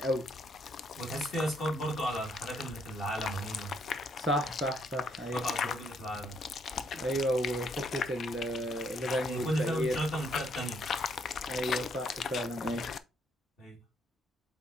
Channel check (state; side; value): normal; both; correlation 0.70